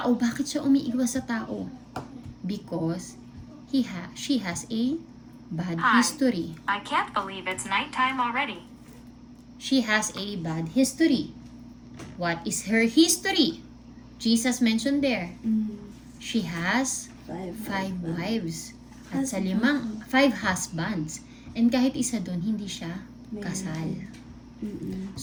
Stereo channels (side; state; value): both; identical; correlation 1.00